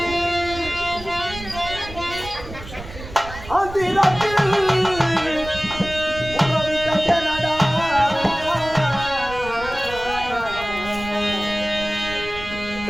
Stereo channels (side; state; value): right; noise; rumble, 13 dB below the sound